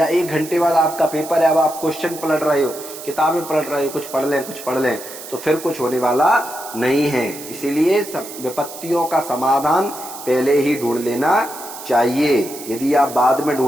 1 घंटे बाद आपका पेपर है, अब आप क्वेश्चन पलट रहे हो, किताबें पलट रहे हो, कुछ पढ़ लें, तो फिर कुछ होने वाला नहीं है। इसीलिए विपत्तियों का समाधान पहले ही ढूंढ लेना चाहिए। यदि आप बाद में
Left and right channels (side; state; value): right; noise; hiss, 13 dB below the sound